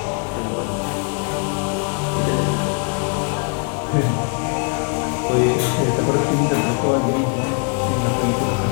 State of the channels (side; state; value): right; quieter; 38.2 dB